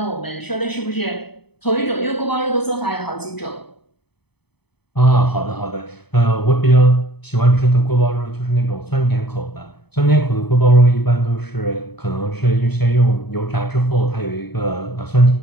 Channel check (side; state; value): right; late; 0.98 ms